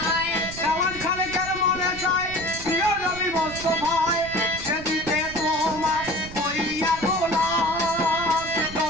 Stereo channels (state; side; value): noise; right; rumble, 13 dB below the sound